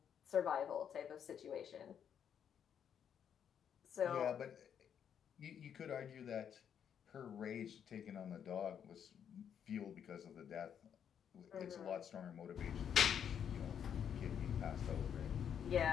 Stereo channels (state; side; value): quieter; right; 8.4 dB